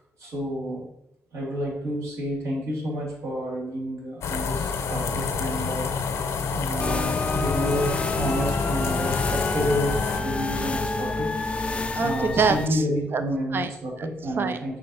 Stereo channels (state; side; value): normal; both; correlation 0.68